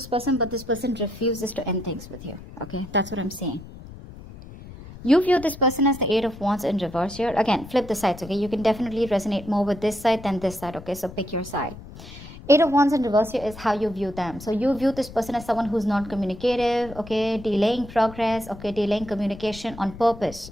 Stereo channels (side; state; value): left; noise; rumble, 15 dB below the sound